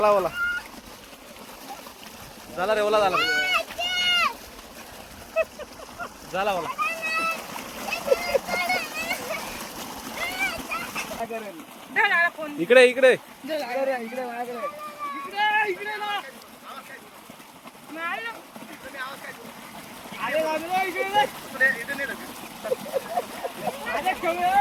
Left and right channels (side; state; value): both; identical; correlation 1.00